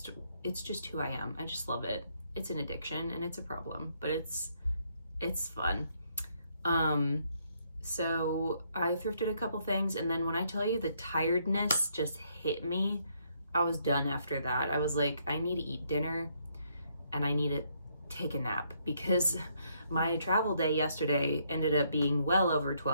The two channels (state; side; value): inverted; both; correlation -0.72